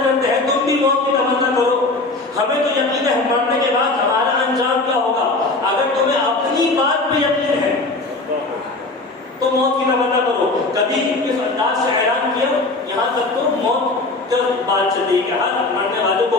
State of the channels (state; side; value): quieter; right; 3.2 dB